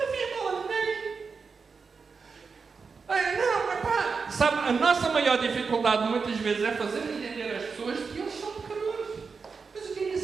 fiz mal a ninguém. Não, epá, sabe, a nossa maior dificuldade muitas vezes é fazer entender às pessoas que eles são pecadores. Mas o que é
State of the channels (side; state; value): left; quieter; 5.1 dB